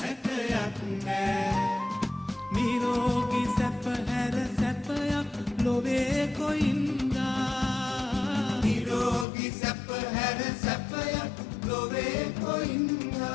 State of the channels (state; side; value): drops out; right; at 9.2 s